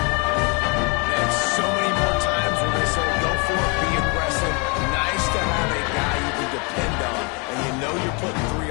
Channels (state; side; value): quieter; right; 32.2 dB